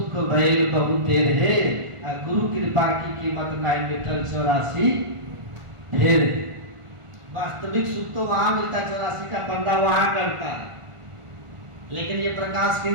भइल बहु तेरे, गुरु कृपा की कीमत नहीं मिटल 84 फिर। वास्तविक सुख तो वहां मिलता है, 84 का बंदा वहां करता है, लेकिन ये प्रकाश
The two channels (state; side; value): late; left; 1.4 ms